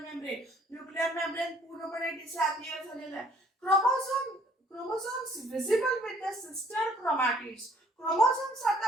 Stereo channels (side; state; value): both; normal; correlation 0.60